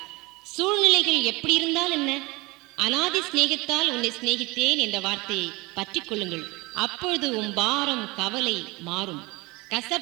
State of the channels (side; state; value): left; quieter; 23.7 dB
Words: சூழ்நிலைகள் எப்படி இருந்தால் என்ன, அனாதி சிநேகத்தால் உன்னை சிநேகித்தேன் என்ற வார்த்தையை பற்றி கொள்ளுங்கள். அப்பொழுது உன் பாரம் கவலை மாறும்,